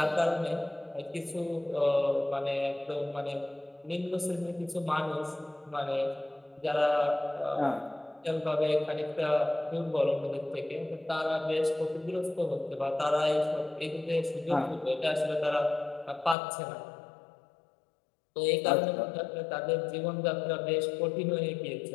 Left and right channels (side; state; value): right; drops out; at 16.4 s